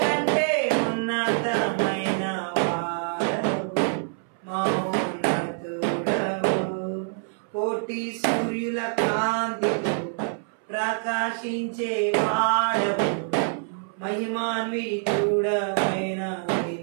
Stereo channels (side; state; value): left; silent; 61 dB below the other